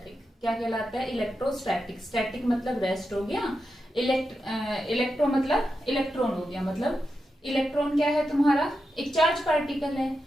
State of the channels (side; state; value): both; normal; correlation 0.88